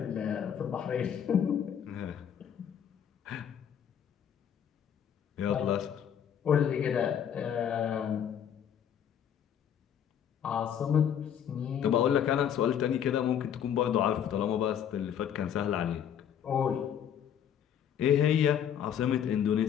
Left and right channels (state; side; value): quieter; right; 8.9 dB